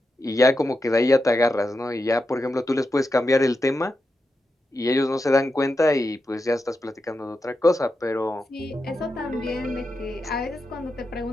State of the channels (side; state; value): both; normal; correlation 0.88